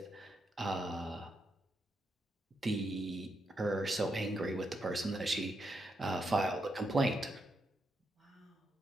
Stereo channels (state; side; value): normal; both; correlation 0.82